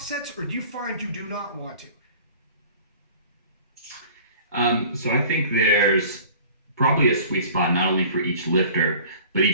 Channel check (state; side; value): inverted; both; correlation -0.46